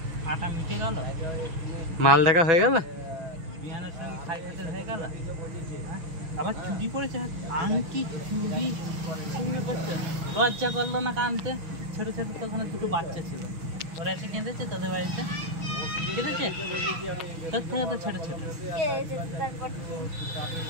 মাল দেখা হয়ে গেল? আবার চুরি করেছে আংটি চুরি করছে। লজ্জা করলো না কানতে? ছোট ছোট তখন দুটো বাচ্চা ছিল, ওরা এসে কেঁদেছে তোদের বাড়িতে, কেঁদেছে তোর থেকে তো ছোট ছোট।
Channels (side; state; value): left; late; 6.2 ms